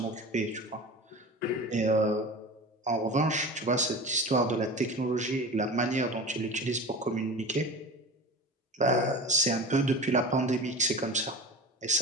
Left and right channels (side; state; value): both; normal; correlation 0.32